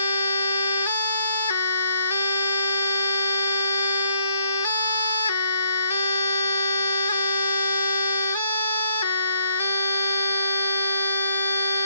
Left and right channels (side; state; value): both; inverted; correlation -0.72